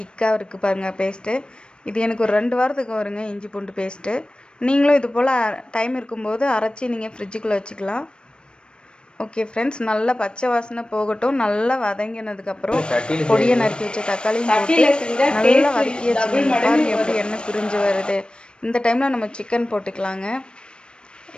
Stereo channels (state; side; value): late; right; 0.055 ms